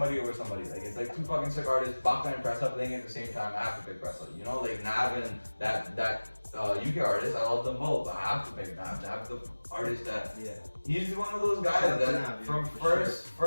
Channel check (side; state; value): both; inverted; correlation -1.00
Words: over somebody. Like, it's like 2 fucking sick artists, Baka and Pressa playing at the same time. I have to pick Pressa. You know, like Nav and that UK artist. I love them both, but I have to pick Nav. Nav's the artist that. Yeah. He's one of those guys that from the